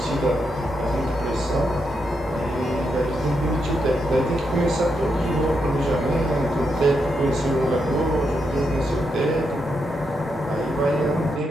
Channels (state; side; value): normal; both; correlation 0.82